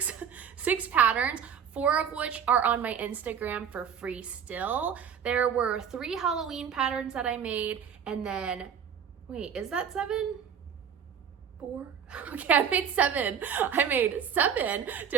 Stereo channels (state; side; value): quieter; left; 7.7 dB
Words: patterns 4 of which are on my Instagram for free still. There were 3 Halloween patterns that I made, and then, wait, is that 7? 4? Okay, I made 7. I made 7